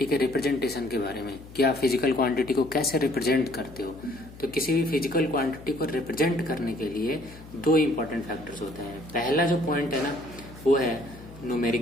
के रिप्रेजेंटेशन के बारे में कि आप फिजिकल क्वांटिटी को कैसे रिप्रेजेंट करते हो। तो किसी भी फिजिकल क्वांटिटी को रिप्रेजेंट करने के लिए दो इंपॉर्टेंट फैक्टर्स होते हैं। पहला जो पॉइंट है ना, वो है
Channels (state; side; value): noise; left; hum, 18 dB below the sound